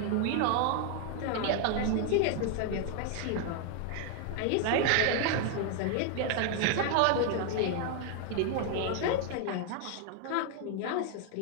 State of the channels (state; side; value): different; both; correlation 0.00